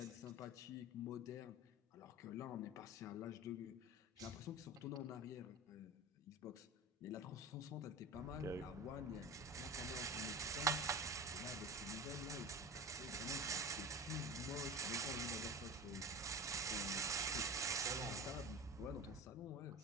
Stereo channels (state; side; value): normal; both; correlation 0.32